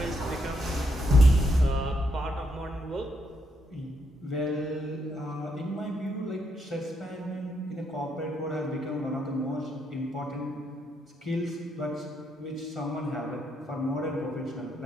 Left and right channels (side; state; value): both; normal; correlation 0.77